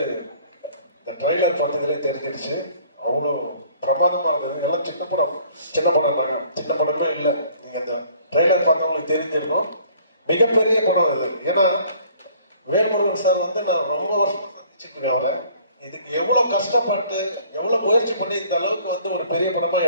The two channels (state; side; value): inverted; both; correlation -0.56